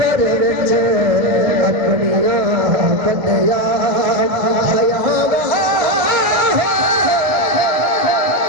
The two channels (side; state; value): left; late; 1.7 ms